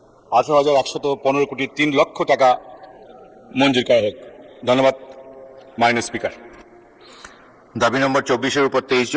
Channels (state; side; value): identical; both; correlation 1.00